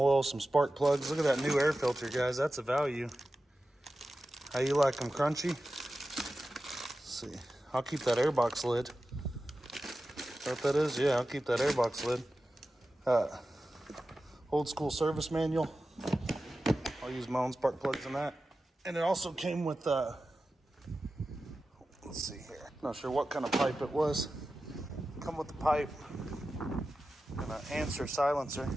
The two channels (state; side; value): normal; both; correlation 0.94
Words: some spark plugs. Look at that new air filter, guys. That's a value. How you like them, crunchy? Let's see. I'll keep that airbox lid. Is that what that is? Yeah, I'll keep that airbox lid. Old school service manual. I'll use my own spark plugs in that. And it also came with, let's see here. Not sure what kind of pipe it was. Come with the pipe and an answer silencer.